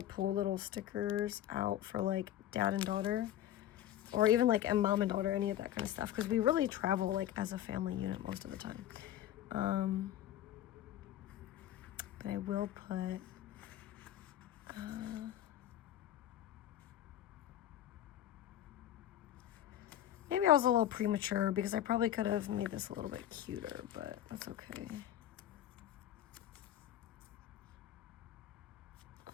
pull little stickers out for like dad and daughter, or even like a mom and daughter, any of that kind of stuff, because we really travel like as a family unit most of the time. But I will put, maybe I was a little premature because I probably could have made this a little bit cuter, but that's okay.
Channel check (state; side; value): quieter; right; 11.8 dB